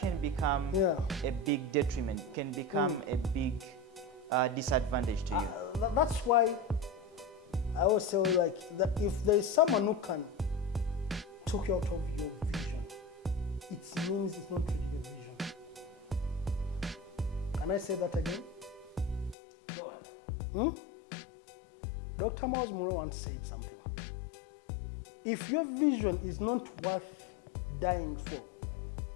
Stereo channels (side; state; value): right; drops out; at 19.4 s